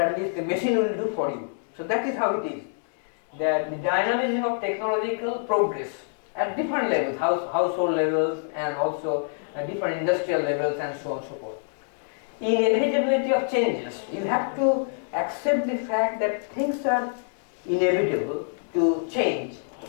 least the machine will do for you. So that is how it is. That the dynamism of technological progress at different levels, household levels, and also at different industrial levels, and so on and so forth. Inevitability of changes. You have to accept the fact that things are inevitable to change,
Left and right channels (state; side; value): silent; right; digital silence